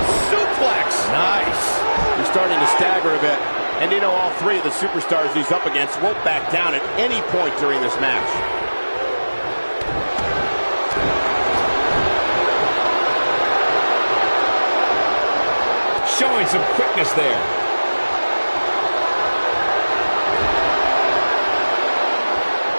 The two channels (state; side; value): inverted; both; correlation -1.00